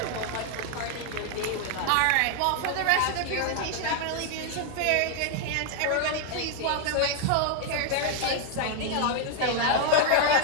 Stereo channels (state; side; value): different; both; correlation 0.00